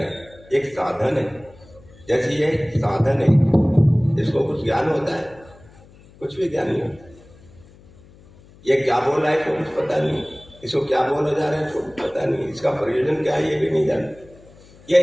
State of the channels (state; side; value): noise; left; hum, 25 dB below the sound